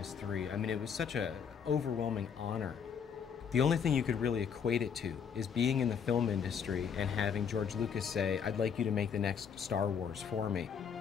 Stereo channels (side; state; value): right; quieter; 7.1 dB